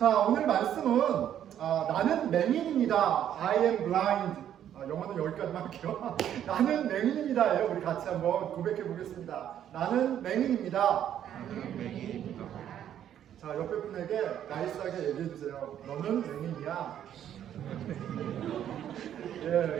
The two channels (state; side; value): quieter; left; 10.3 dB